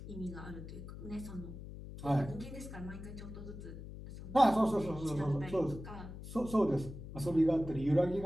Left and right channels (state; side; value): noise; left; hum, 11 dB below the sound